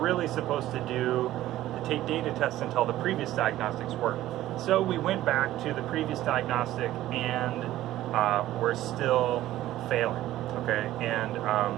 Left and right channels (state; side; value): quieter; left; 14.4 dB